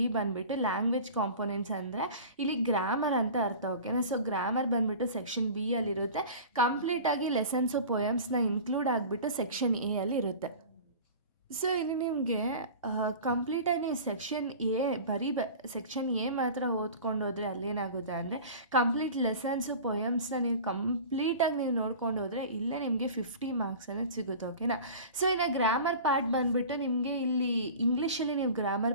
ಬಂದುಬಿಟ್ಟು ಲ್ಯಾಂಗ್ವೇಜ್ ಕಾಂಪೋನೆಂಟ್ಸ್ ಅಂದರೆ ಇಲ್ಲಿ ಗ್ರಾಮರ್ ಅಂತ ಅರ್ಥ, ಓಕೆನಾ. ಸೊ ಗ್ರಾಮರ್ ಬಂದುಬಿಟ್ಟು ಸೆಕ್ಷನ್ ಬಿ ಅಲ್ಲಿರುತ್ತೆ. ಕಂಪ್ಲೀಟಾಗಿ ಲೆಸನ್ಸು ಪೊಯಮ್ಸ್ನ ಇನ್ಕ್ಲೂಡ್ ಆಗಿಬಿಟ್ಟು ಸೆಕ್ಷನ್ ಎ ಅಲ್ಲಿ ಇರುತ್ತೆ. ಸೊ ಇಲ್ಲಿ ನಿಮಗೆ ಕಂಪ್ಲೀಟಾಗಿ ಸೆಕ್ಷನ್ ಸೆಕ್ಷನ್ ಎ ಮಾತ್ರ ಓದ್ಕೊಂಡು ಹೋದರೆ ಅಲ್ಲೇನಾಗುತ್ತೆ ಅಂದರೆ ಕಂಪ್ಲೀಟ್ ಲೆಸನ್ಸು ಪೊಯಮ್ಸ್ನ ನೀವು ಕಂಪ್ಲೀಟಾಗಿ ನೀವು ನೋಡ್ಕೊಂಡು ಹೋದರೆ ಇಲ್ಲೇ ನಿಮಗೆ 50 ಮಾರ್ಕ್ಸ್ ಅನ್ನೋದು ಸಿಗುತ್ತೆ, ಓಕೆನಾ. ಸೊ ಇನ್ನು ಗ್ರಾಮರ್ ಪಾರ್ಟ್ ಬಂದುಬಿಟ್ಟು ನಿಮಗೆ ಇಲ್ಲಿ ಇಂಗ್ಲೀಷಲ್ಲಿ ನೀವು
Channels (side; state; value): both; inverted; correlation -0.38